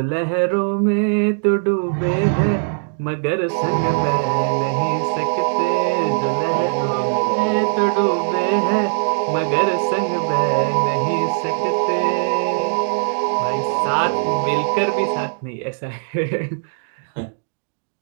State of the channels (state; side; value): silent; left; digital silence